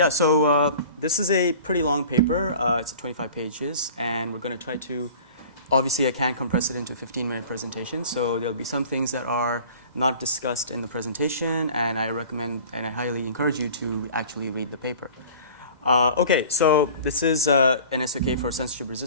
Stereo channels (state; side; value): late; left; 2.0 ms